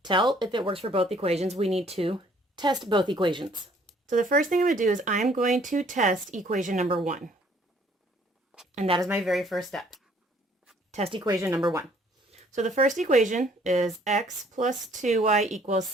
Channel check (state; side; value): normal; both; correlation 0.60